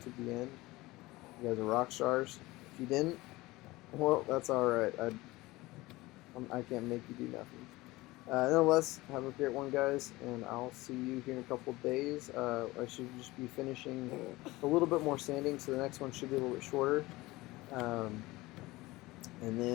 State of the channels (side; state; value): right; quieter; 20.1 dB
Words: the end, you guys are rock stars. If you didn't, well, that's alright. I can't make you do nothing. Nonetheless, have a great one, guys, and I'll see you here in a couple of days. I should just be finishing a little bit more sanding, so the next one should be a little bit shorter. Um, and